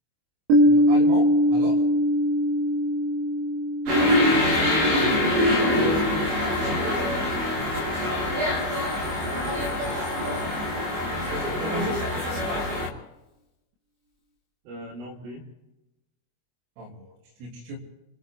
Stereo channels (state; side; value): late; left; 25 ms